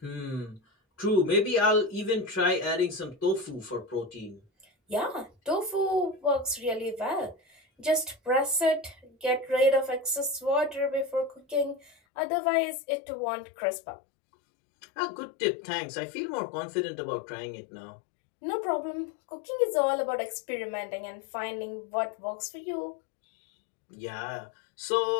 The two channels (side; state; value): right; drops out; at 12.0 s